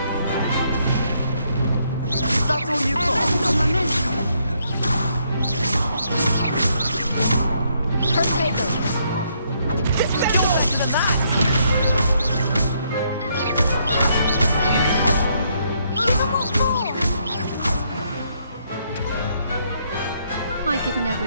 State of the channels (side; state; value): both; inverted; correlation -0.73